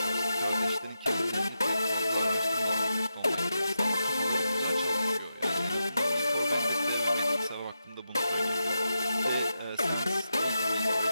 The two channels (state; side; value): inverted; both; correlation -0.88